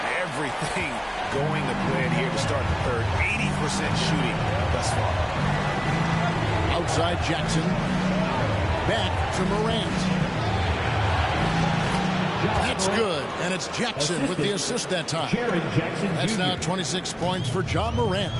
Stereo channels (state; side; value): identical; both; correlation 1.00